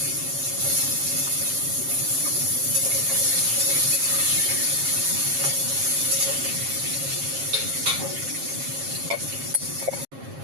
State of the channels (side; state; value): left; late; 7.4 ms